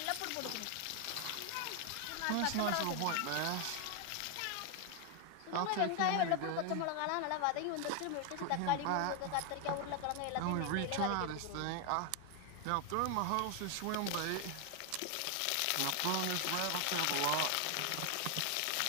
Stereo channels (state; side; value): different; both; correlation 0.00